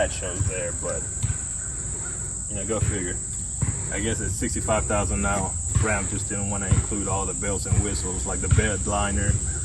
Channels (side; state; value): both; identical; correlation 1.00